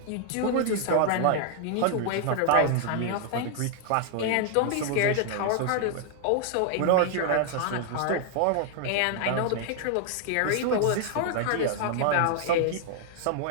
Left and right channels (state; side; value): different; both; correlation 0.00